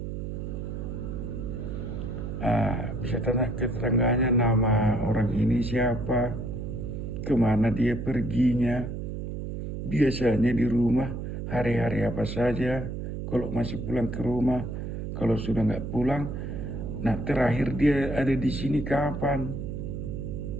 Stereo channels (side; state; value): right; noise; hum, 5 dB below the sound